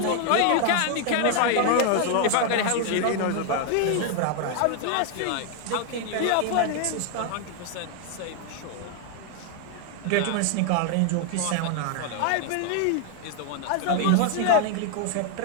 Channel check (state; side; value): different; both; correlation 0.00